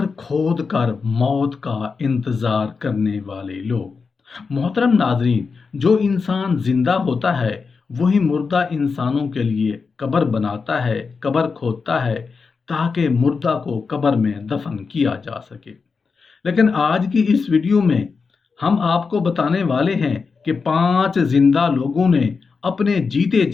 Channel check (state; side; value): quieter; right; 5.0 dB